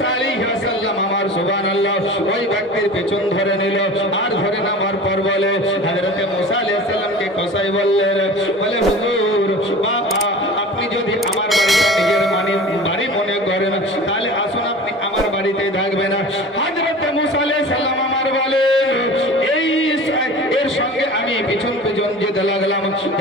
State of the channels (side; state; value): both; normal; correlation 0.38